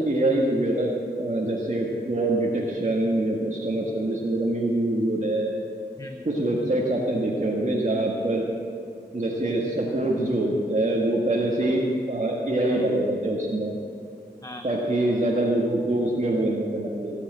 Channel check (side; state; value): both; normal; correlation 0.68